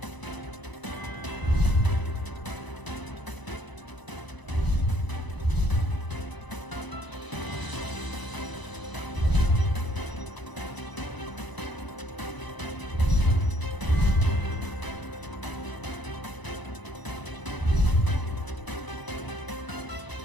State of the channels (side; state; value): right; late; 1.0 ms